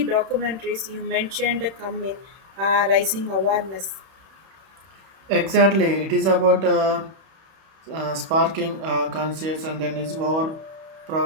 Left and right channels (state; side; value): late; left; 31 ms